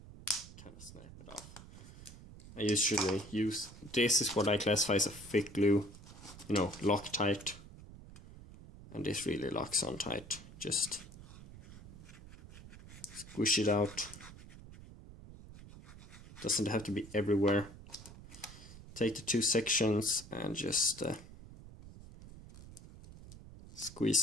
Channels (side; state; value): right; noise; rumble, 17 dB below the sound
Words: kind of snap it off. I usually use, this is what I classify as a thick glue, you know, Loctite. And this really locks on tight. Just squish it out. Doesn't have to be everywhere. Take the 2 sections and just squeeze